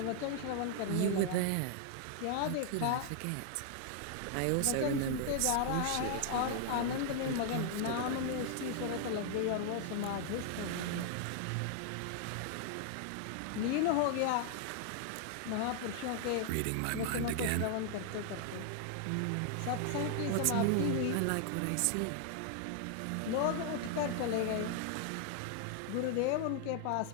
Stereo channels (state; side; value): different; both; correlation 0.00